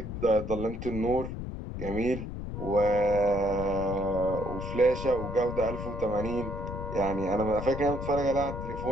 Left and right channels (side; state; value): left; noise; rumble, 7 dB below the sound